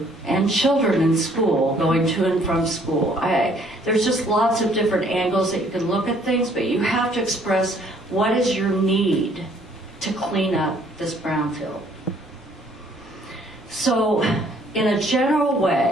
And children in school, going to and from school. There's just lots of different angles that you can look at things, but you have to express what is your need to clean up this brownfield. So, in a general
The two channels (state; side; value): normal; both; correlation 0.62